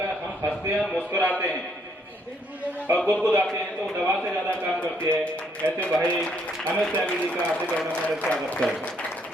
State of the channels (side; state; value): both; normal; correlation 0.70